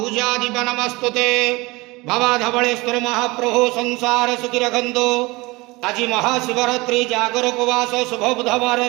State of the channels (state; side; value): quieter; left; 23.1 dB